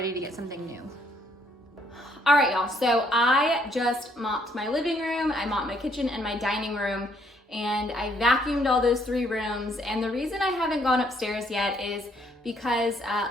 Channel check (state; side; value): normal; both; correlation 0.68